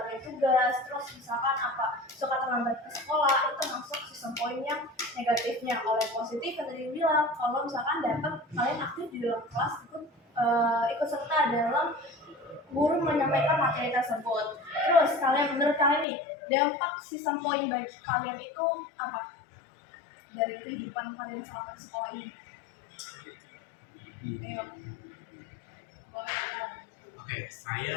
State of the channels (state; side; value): drops out; right; at 16.1 s